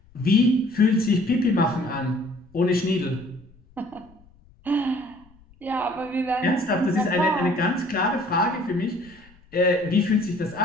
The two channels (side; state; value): left; noise; rumble, 28 dB below the sound